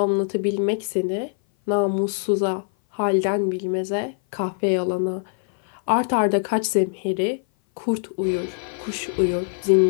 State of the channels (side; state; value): right; silent; 58 dB below the other